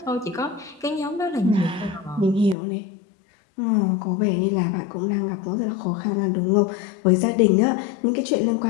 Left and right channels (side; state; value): right; drops out; at 2.6 s